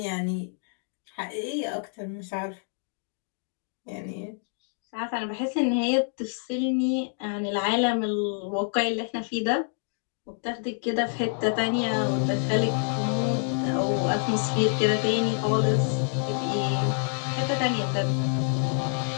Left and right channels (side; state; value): right; silent; 60 dB below the other